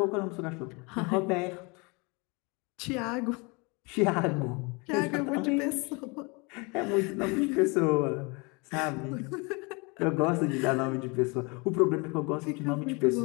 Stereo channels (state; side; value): quieter; right; 29.2 dB